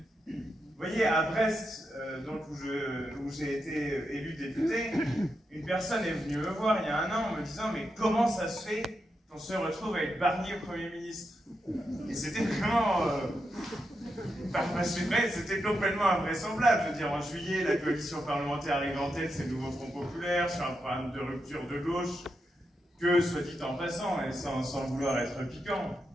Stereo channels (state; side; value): normal; both; correlation 0.85